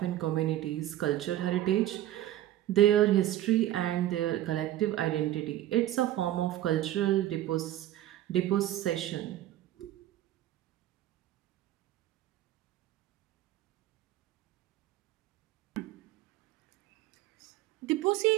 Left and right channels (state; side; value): quieter; left; 13.5 dB